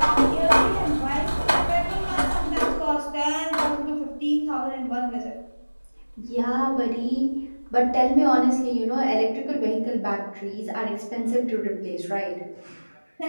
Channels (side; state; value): both; inverted; correlation -1.00